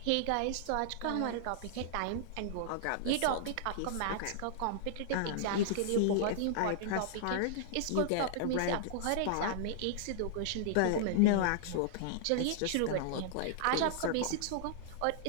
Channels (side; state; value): both; different; correlation -0.01